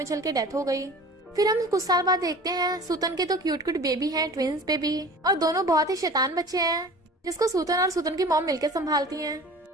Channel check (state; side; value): normal; both; correlation 0.41